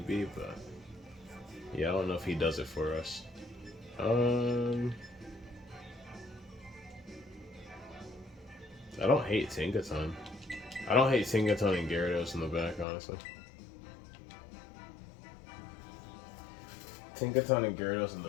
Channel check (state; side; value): drops out; right; at 12.9 s